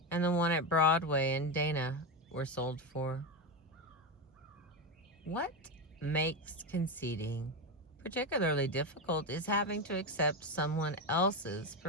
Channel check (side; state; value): both; normal; correlation 0.13